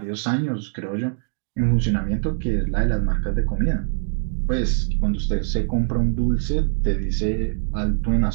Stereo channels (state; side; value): silent; left; 62 dB below the other